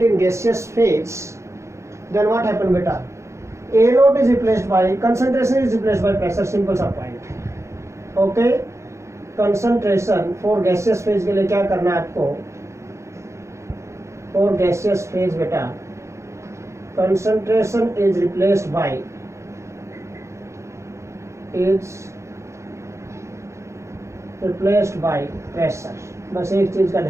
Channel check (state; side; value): late; left; 0.14 ms